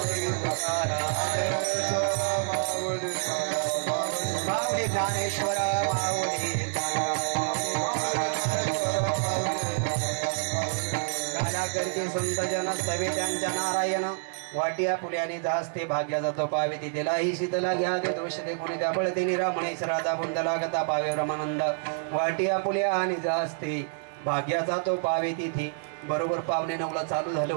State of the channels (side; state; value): left; silent; digital silence